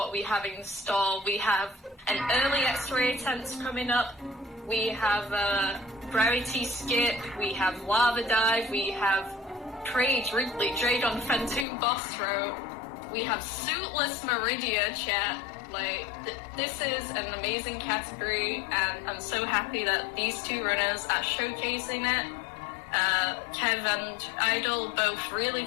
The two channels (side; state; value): right; drops out; at 11.7 s